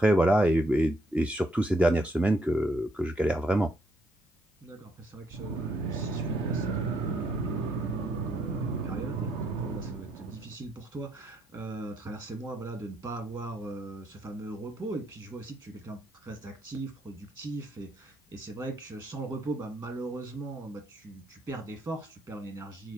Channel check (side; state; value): both; normal; correlation 0.74